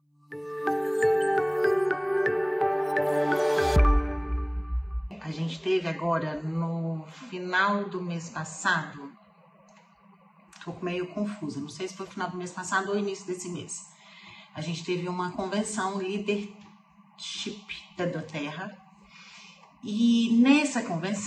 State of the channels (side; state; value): both; identical; correlation 1.00